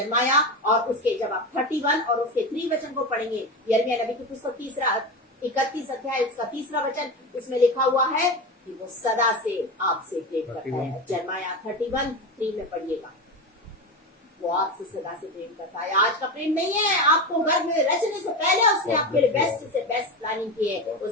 और उसके, जब आप 31 और उसके 3 वचन को पढ़ेंगे, यिर्मयाह नबी की पुस्तक 31 अध्याय उसका 3 वचन, उसमें लिखा हुआ है कि वो सदा से आपसे प्रेम करता है। जर्माया 31:3 में पढ़िएगा, वो आपसे सदा से प्रेम करता है। आज का प्रेम नहीं है, आपको घर में रचने से पहले उसने आपके लिए बेस्ट से बेस्ट प्लानिंग की है।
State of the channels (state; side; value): normal; both; correlation 0.21